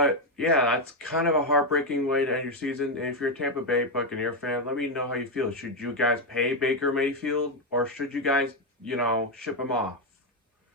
yeah, that's kind of a heartbreaking way to end your season. And if you're a Tampa Bay Buccaneer fan, let me know how you feel. Should you guys pay Baker Mayfield, or should you guys, ship him off?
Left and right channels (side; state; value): both; normal; correlation 0.05